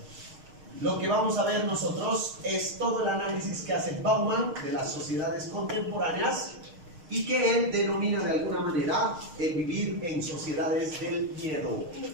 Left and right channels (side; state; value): left; late; 6.5 ms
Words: lo que vamos a ver nosotros es todo el análisis que hace Bauman de las sociedades contemporáneas y que él denomina de alguna manera el vivir en sociedades del miedo.